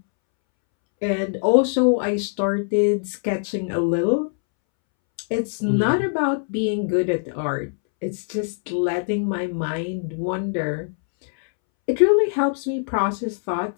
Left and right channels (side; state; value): right; silent; 64 dB below the other